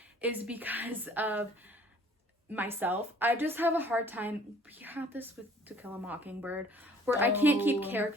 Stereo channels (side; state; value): both; normal; correlation 0.55